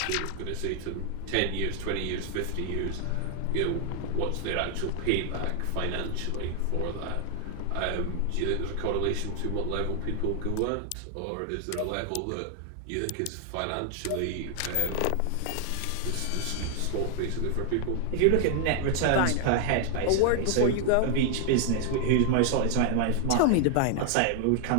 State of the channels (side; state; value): both; different; correlation 0.00